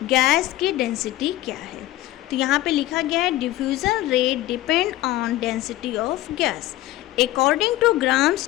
गैस की डेंसिटी क्या है? तो यहाँ पे लिखा गया है diffusion rate depend on density of gas. According to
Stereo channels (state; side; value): quieter; right; 15.8 dB